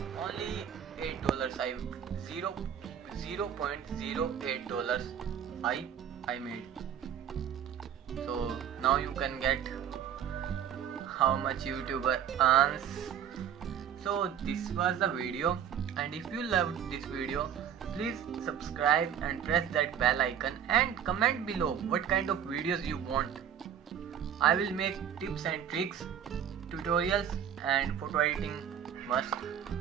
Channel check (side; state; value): left; quieter; 8.9 dB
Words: only $8 $0.08 I made. So now you can get how much YouTuber earns. So this was the video, and if you loved this video, please subscribe and press that bell icon and comment below what kind of videos you want. I will make tips and tricks, tutorials and photo editing must.